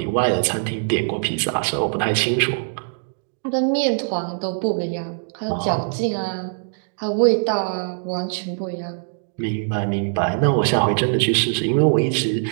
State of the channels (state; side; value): silent; left; digital silence